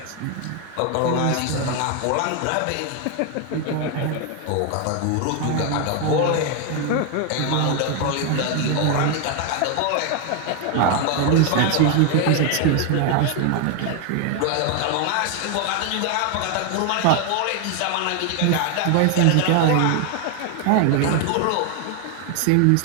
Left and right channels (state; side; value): different; both; correlation 0.01